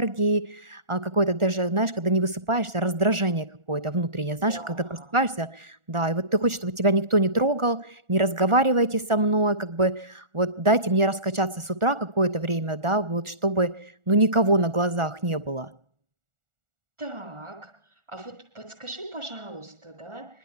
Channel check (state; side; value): late; left; 1.4 ms